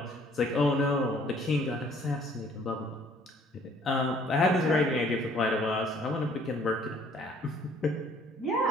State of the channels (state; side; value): normal; both; correlation 0.59